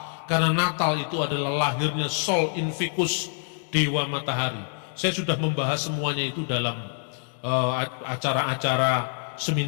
karena Natal itu adalah lahirnya Sol Invictus, Dewa Matahari. Saya sudah membahas semuanya itu dalam acara-acara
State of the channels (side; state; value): right; silent; 57 dB below the other